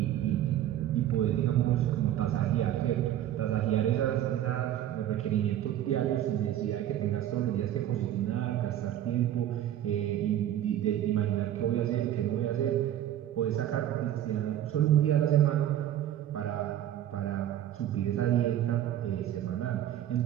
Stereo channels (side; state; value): left; quieter; 11.8 dB